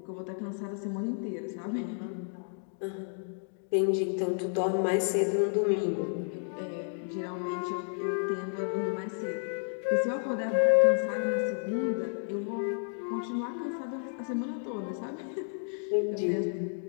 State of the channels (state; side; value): silent; right; 57 dB below the other